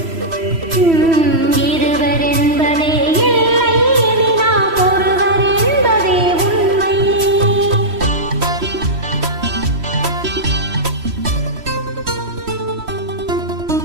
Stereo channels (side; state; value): left; late; 3.1 ms